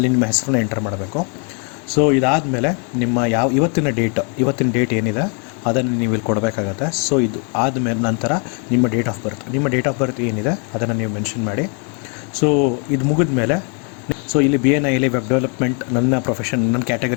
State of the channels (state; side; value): quieter; right; 38.0 dB